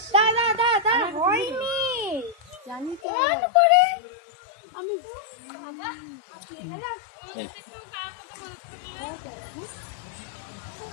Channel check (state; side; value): drops out; right; at 3.0 s